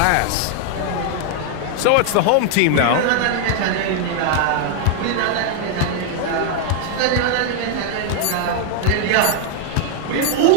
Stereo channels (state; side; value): different; both; correlation 0.00